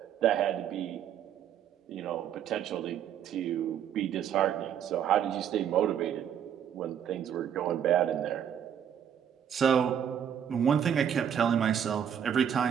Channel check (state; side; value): quieter; left; 9.0 dB